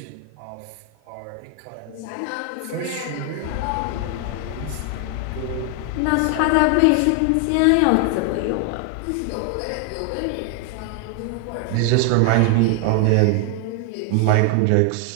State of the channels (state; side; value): different; both; correlation 0.00